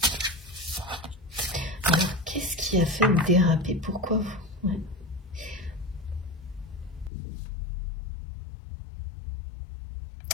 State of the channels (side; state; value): right; drops out; at 7.1 s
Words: Alors, qu'est-ce qui a fait déraper? Pourquoi vous... Ouais.